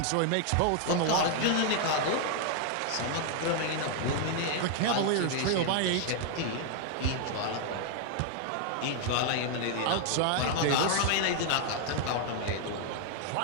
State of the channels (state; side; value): different; both; correlation 0.00